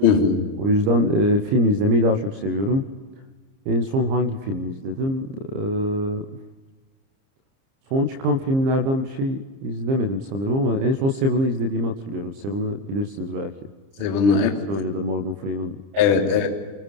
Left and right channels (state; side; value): late; left; 30 ms